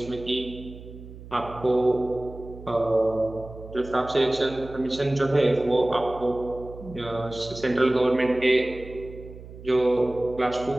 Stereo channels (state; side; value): noise; right; hum, 16 dB below the sound